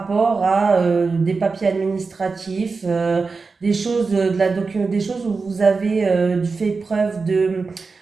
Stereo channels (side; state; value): left; quieter; 4.4 dB